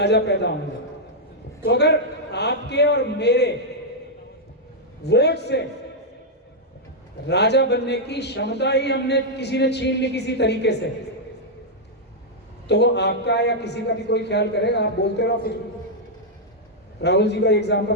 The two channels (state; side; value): normal; both; correlation -0.05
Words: पैदा होंगे। तो अगर आपके और मेरे वोट से राजा बनने की क्षमता ही हमने किसी ने छीन ली किसी तरीके से, तो वो आपका या किसी का भी कोई ख्याल करेगा? आप बोलते रहो कुछ। राहुल जी का एग्जाम्पल